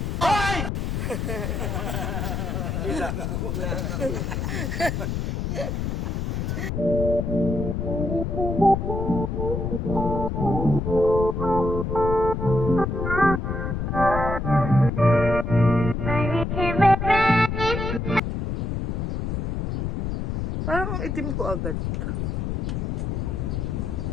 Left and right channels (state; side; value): noise; left; rumble, 1 dB below the sound